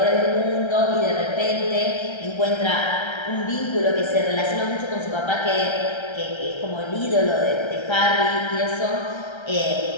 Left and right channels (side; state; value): right; late; 1.3 ms